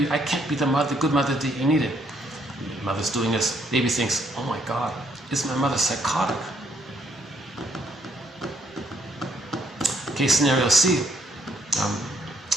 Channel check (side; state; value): both; normal; correlation 0.69